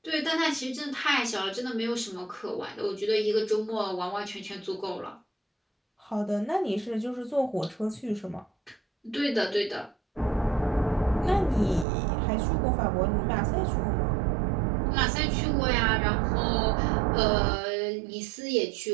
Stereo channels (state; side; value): drops out; left; at 11.9 s